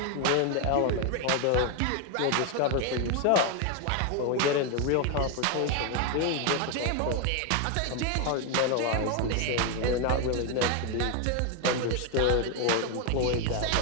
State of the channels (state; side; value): different; both; correlation 0.01